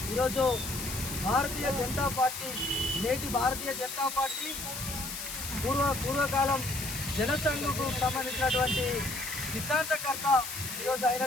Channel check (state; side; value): noise; left; hiss, 7 dB below the sound